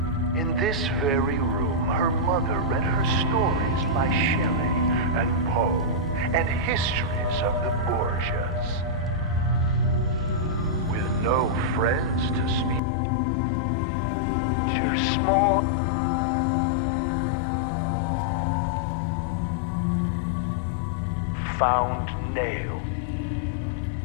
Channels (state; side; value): drops out; right; at 12.8 s